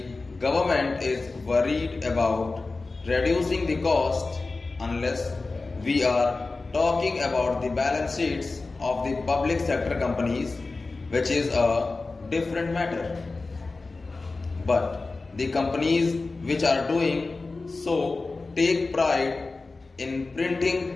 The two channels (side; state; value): right; quieter; 3.6 dB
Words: government is worried about reducing the cost unless we are talking about the balance sheets of the public sector companies, which is a different matter. But the companies which are doing so take pride in